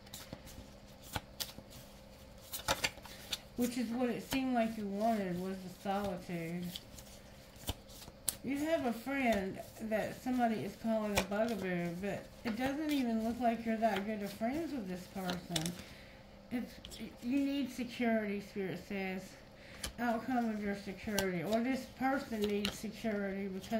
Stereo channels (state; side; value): identical; both; correlation 1.00